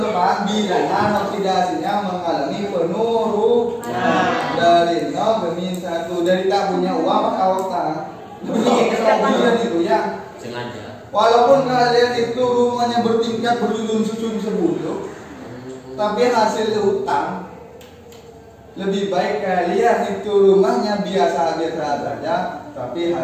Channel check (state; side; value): identical; both; correlation 1.00